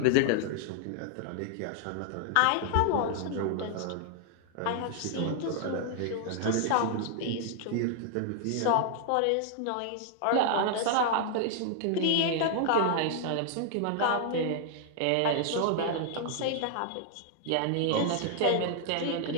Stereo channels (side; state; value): both; different; correlation 0.00